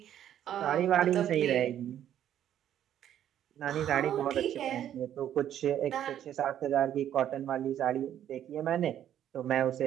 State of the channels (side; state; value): left; quieter; 10.7 dB